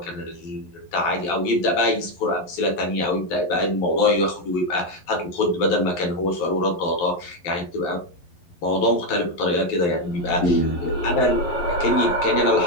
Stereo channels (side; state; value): right; late; 11 ms